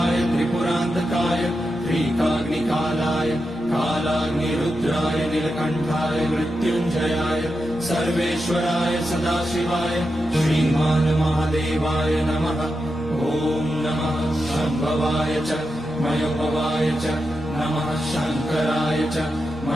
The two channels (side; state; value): both; normal; correlation 0.88